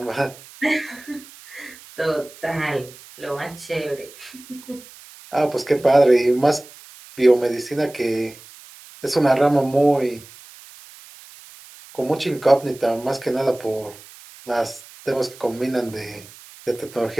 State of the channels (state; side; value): noise; right; hiss, 20 dB below the sound